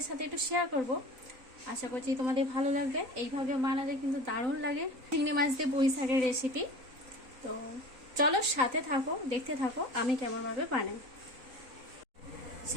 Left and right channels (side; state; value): left; late; 3.9 ms